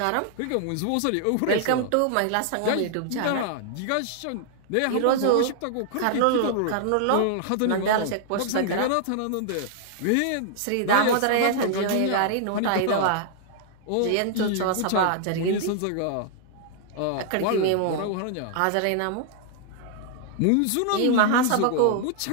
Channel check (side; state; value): both; different; correlation -0.01